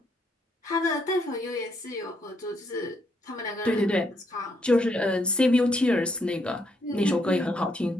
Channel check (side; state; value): both; normal; correlation 0.74